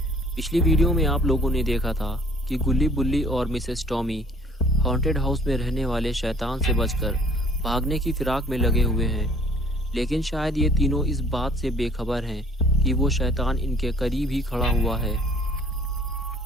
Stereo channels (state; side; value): normal; both; correlation 0.55